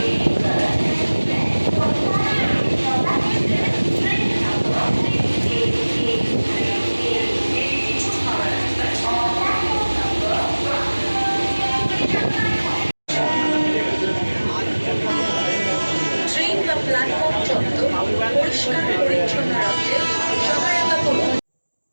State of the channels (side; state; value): both; inverted; correlation -1.00